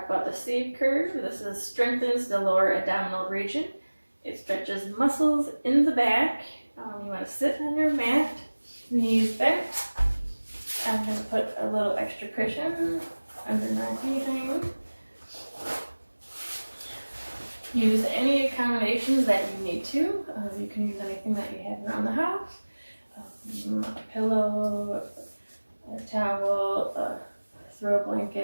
about the C curve. This strengthens the lower abdominal region. It stretches muscles in the back. You want to sit on your mat, knees bent. I'm going to put a little extra cushion under my behind. Use any accommodations that you need to. You can use anything that you have around the house. A pillow, a towel, a throw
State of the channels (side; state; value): both; inverted; correlation -1.00